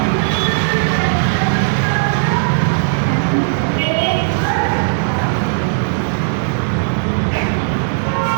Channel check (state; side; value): silent; left; digital silence